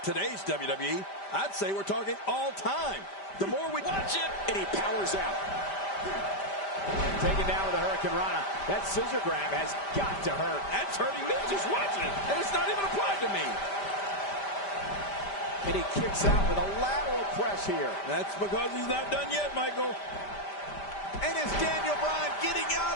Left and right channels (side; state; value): right; late; 5.1 ms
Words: today's WWE. I'd say we're talking all time. The more we watch it, and he powers out. Taken down with a Hurricane Rana. That scissor grab has got to hurt. That's hurting me just watching it, and it's not even applied to me. And he kicks out with a lateral press here. That's because he's not done yet, Michael. And is Daniel Bryan getting out